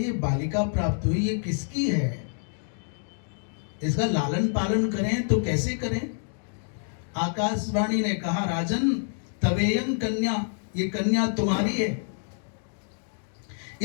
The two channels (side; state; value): right; silent; digital silence